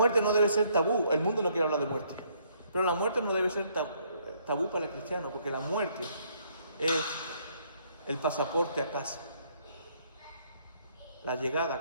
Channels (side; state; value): both; inverted; correlation -0.68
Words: no debe ser tabú. El mundo no quiere hablar de muerte. Pero la muerte no debe ser tabú para el cristiano, porque la muerte es el pasaporte a casa. La llegada a